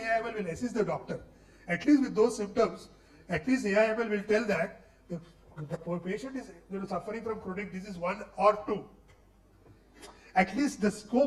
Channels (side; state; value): both; identical; correlation 1.00